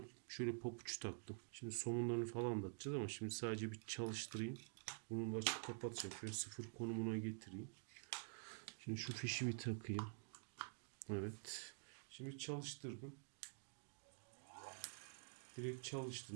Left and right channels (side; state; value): left; silent; digital silence